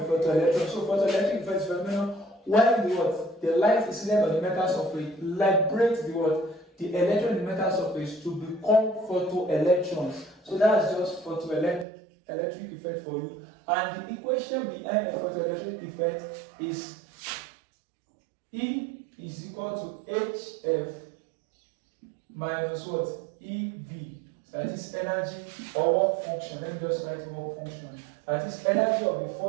photoelectric effect is phenomenon when the light is incident on the metal surface liberates the electron on the metal surface to become photoelectrons. So that's just photoelectric photoelectric effect for you, and the equation behind a photoelectric effect is E is equal to HF minus what? EV. That is energy or work function. Let me just write work function. That is energy of the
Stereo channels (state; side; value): drops out; left; at 11.9 s